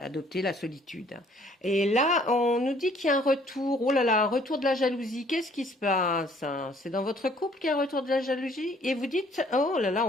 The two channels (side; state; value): both; normal; correlation 0.60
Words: la solitude. Et là, on nous dit qu'il y a un retour. Oh là là, un retour de la jalousie. Qu'est-ce qui se passe? C'est dans votre couple qu'il y a un retour de la jalousie? Et vous dites, oh là là,